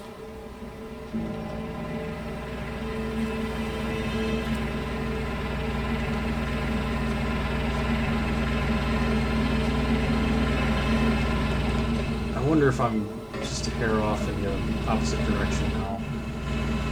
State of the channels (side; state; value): both; identical; correlation 1.00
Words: I wonder if I'm just a hair off in the opposite direction now.